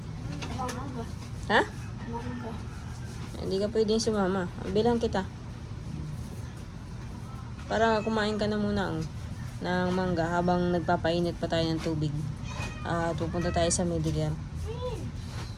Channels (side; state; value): both; identical; correlation 1.00